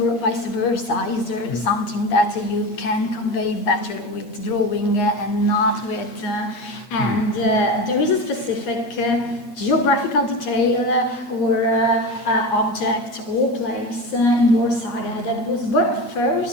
vice versa. Is there something that you can convey better with drawing and not with? And there is a specific geographical detail or object or place in your saga that was born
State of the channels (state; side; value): late; right; 8.5 ms